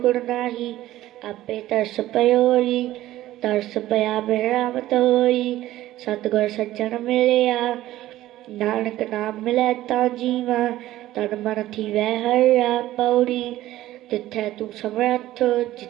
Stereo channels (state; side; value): quieter; left; 15.0 dB